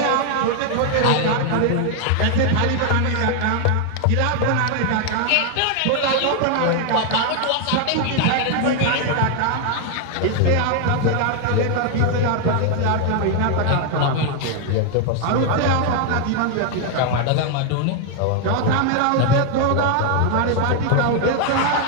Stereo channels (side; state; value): both; different; correlation 0.00